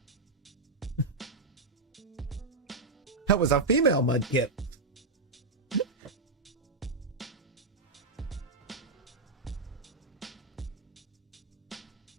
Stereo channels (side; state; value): left; quieter; 3.5 dB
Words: That was a female mudkip.